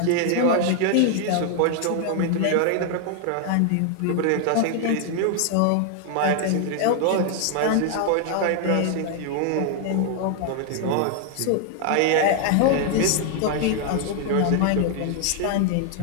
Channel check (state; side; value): different; both; correlation 0.00